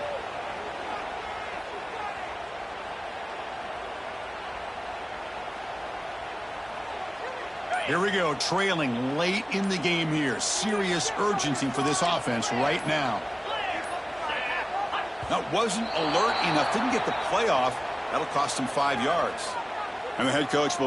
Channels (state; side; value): identical; both; correlation 1.00